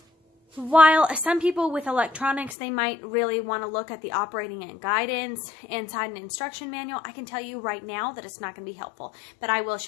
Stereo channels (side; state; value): right; drops out; at 2.6 s